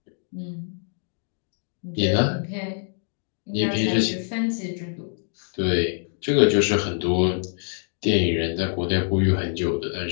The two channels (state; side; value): silent; right; digital silence